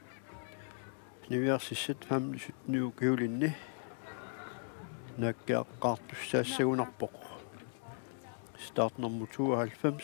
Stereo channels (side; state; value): right; silent; digital silence